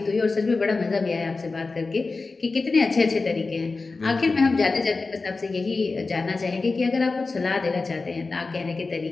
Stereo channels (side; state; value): right; quieter; 3.9 dB